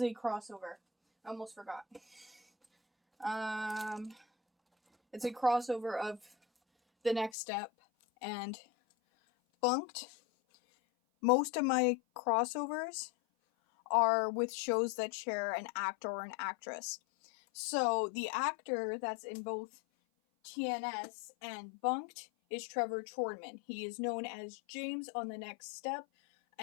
a crossover. I almost forgot. It's a crossover of The Next Step and Bunked. Most of my crossovers are with shows that share an actor or an actress. So the actor that's in both TNS and Bunked is Trevor Chornman. He is known as James on The Next Step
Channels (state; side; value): drops out; right; at 7.3 s